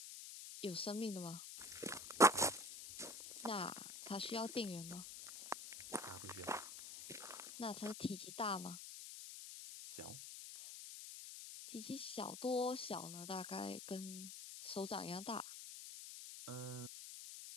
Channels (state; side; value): noise; left; hiss, 9 dB below the sound